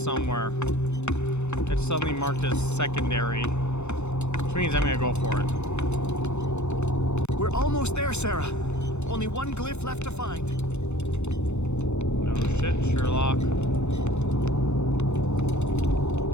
It's suddenly marked as secondary, which means I'm gonna go for it. We're almost there, Sarah. Only one glyph left to find. No shit, Sherlock.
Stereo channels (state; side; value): late; right; 0.82 ms